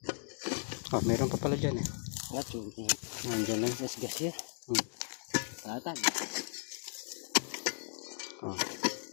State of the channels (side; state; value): right; silent; 54 dB below the other